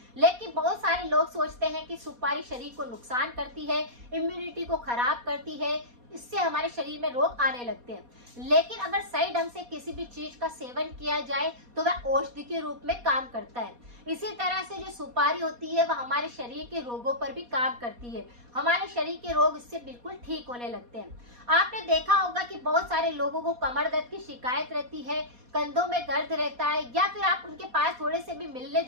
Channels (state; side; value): late; left; 4.2 ms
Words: लेकिन बहुत सारे लोग सोचते हैं कि सुपारी शरीर को नुकसान करती है, इम्यूनिटी को खराब करती है, इससे हमारे शरीर में रोग आने लगते हैं। लेकिन अगर सही ढंग से किसी भी चीज का सेवन किया जाए तो वह औषधि के रूप में काम करता है। इसी तरह से जो सुपारी होती है वह हमारे शरीर के रोगों पर भी काम करती है। हमारे शरीर के रोग इससे बिल्कुल ठीक होने लगते हैं। आपने देखा होगा कि बहुत सारे लोगों को कमर दर्द की शिकायत रहती है, कंधों में दर्द रहता है, या फिर आप उनके पास थोड़े से भी मिलने